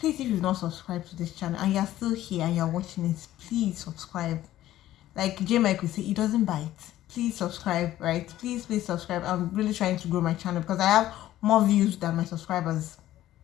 if you've not subscribed to this channel and you're still here and you're watching it, please subscribe. Like J Mike would say, it doesn't bite. Please subscribe, right? Please subscribe. I'm really trying to grow my channel because I have more views than my subscribers.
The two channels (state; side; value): quieter; right; 13.8 dB